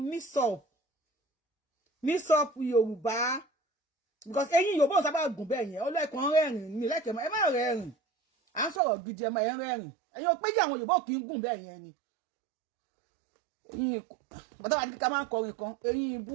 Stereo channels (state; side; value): drops out; left; at 8.8 s